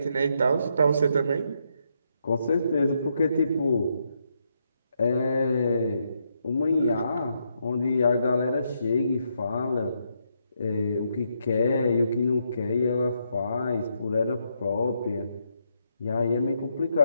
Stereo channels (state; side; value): inverted; both; correlation -0.78